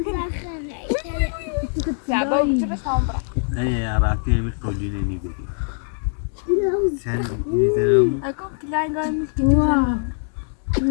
شعبه چه بس هم برا أي راكي مكولي نيجي sen izlerim اکم کلای گایم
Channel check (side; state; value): right; silent; digital silence